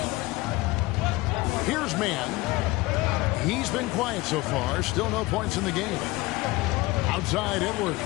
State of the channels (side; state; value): right; quieter; 20.5 dB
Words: Here's Mann. He's been quiet so far. Still no points in the game. Outside Edwards.